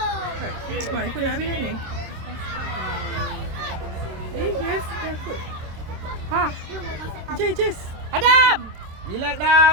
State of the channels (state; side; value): late; left; 26 ms